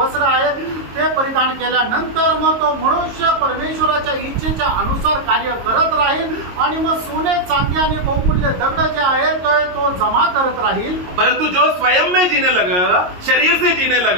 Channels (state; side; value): late; left; 22 ms